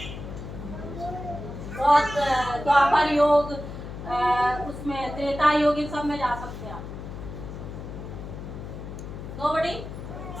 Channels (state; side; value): noise; left; hum, 9 dB below the sound